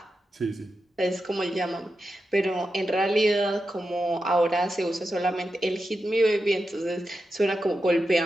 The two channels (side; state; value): both; normal; correlation 0.89